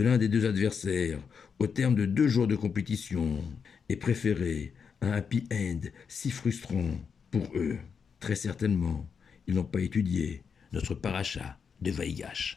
l'un des 2 adversaires au terme de 2 jours de compétition et préférer un happy end si frustrant pour eux. Très certainement, ils n'ont pas étudié notre paracha de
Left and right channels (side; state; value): right; quieter; 6.3 dB